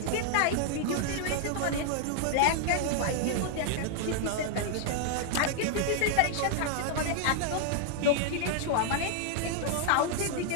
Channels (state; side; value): different; both; correlation 0.00